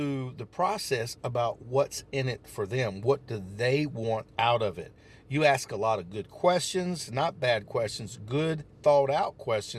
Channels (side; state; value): both; identical; correlation 1.00